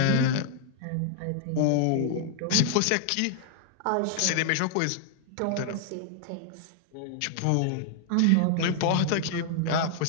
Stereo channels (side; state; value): both; different; correlation 0.00